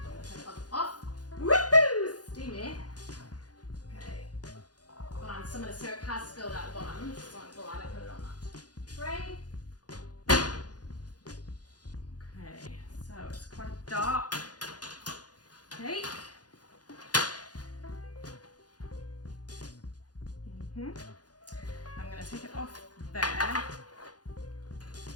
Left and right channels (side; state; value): right; late; 0.69 ms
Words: going to turn the oven off. Woohoo! Steamy. Okay. And some of the syrup has spilled out the bottom, so I'm glad I put it on that tray. Okay, so it's quite a dark cake. I'm going to take it off there,